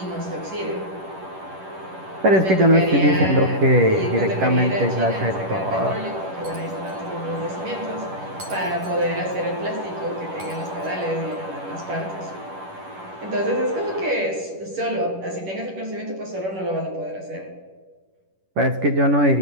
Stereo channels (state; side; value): late; left; 11 ms